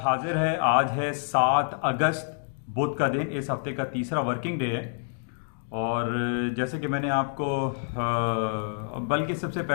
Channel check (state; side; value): silent; right; digital silence